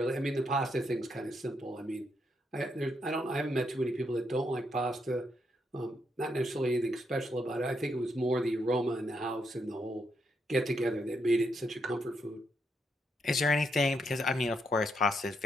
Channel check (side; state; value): both; normal; correlation 0.78